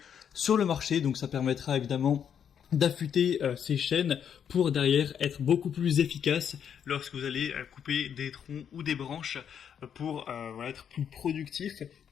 sur le marché. Donc ça permettra évidemment d'affûter ces chaînes pour derrière être beaucoup plus efficace lorsque vous allez couper des troncs ou des branches pour voilà, être plus productif.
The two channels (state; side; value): quieter; right; 8.3 dB